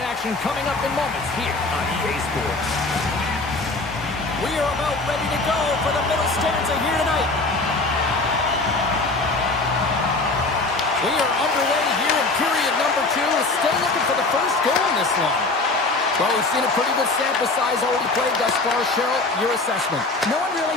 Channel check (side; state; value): right; quieter; 3.3 dB